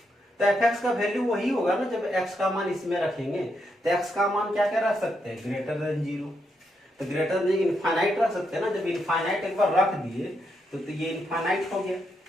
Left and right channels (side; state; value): both; normal; correlation 0.80